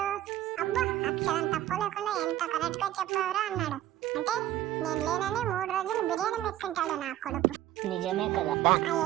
అబ్బా అక్షరం తప్పు లేకుండా ఎంత కరెక్ట్ గా చెప్పావురా అన్నాడు. అంటే నేను లేనని 3 రోజులు బిర్యానీ మెక్కుంటాడు నా కొడుకు. నిజమే కదా.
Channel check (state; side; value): quieter; left; 13.5 dB